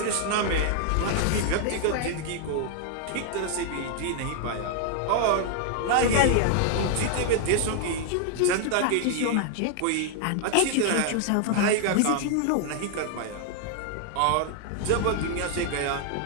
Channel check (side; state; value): both; different; correlation 0.00